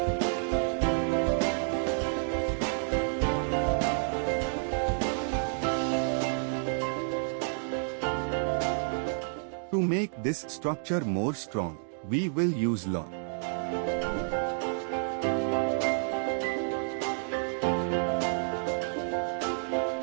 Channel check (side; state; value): left; silent; digital silence